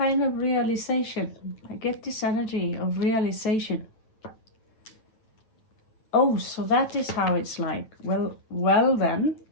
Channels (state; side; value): late; right; 9.4 ms